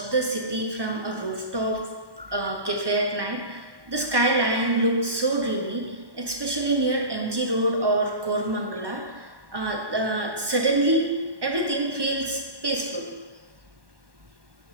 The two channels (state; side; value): late; left; 1.1 ms